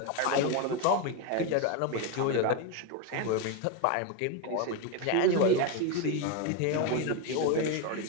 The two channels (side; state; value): both; different; correlation 0.02